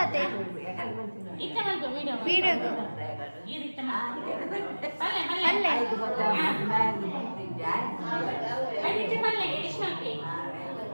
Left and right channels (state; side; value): inverted; both; correlation -1.00